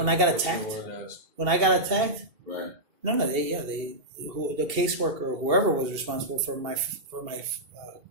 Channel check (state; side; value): late; left; 2.7 ms